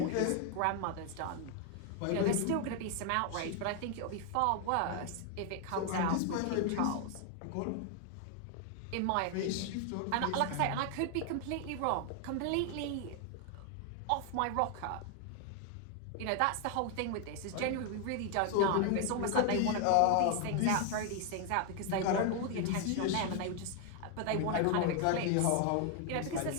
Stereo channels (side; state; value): both; different; correlation 0.00